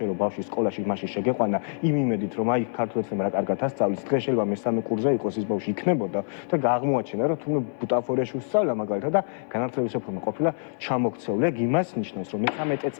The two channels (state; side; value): silent; right; 61 dB below the other